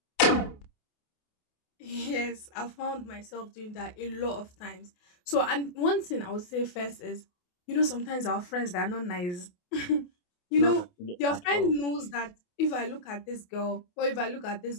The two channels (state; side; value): late; right; 28 ms